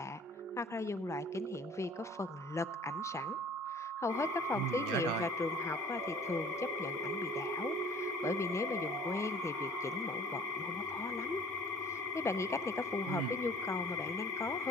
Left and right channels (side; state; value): both; normal; correlation 0.50